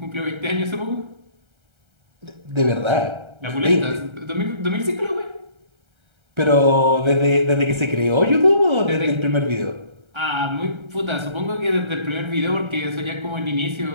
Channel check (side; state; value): left; late; 1.3 ms